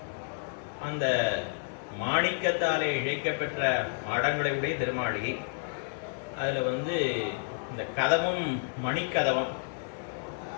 அந்த மாணிக்கத்தாலே இழைக்கப்பெற்ற மாடங்களை உடைய திருமாளிகை. அதில் இந்த கதவும் மணிக்கதவம்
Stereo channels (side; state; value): right; silent; digital silence